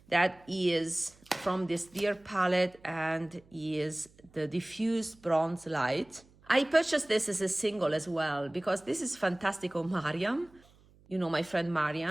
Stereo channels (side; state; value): right; noise; hum, 28 dB below the sound